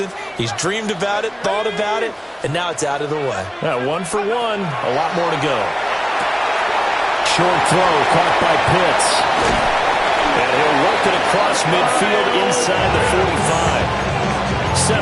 He's dreamed about it, thought about it, and now it's out of the way. Yeah, 1 for 1. A lot more to go. Short throw caught by Pitts. And he'll work it across midfield inside the 45.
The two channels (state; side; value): identical; both; correlation 1.00